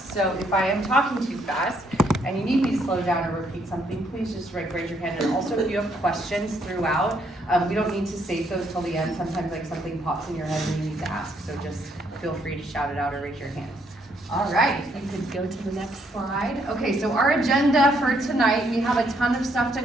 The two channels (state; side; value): normal; both; correlation 0.71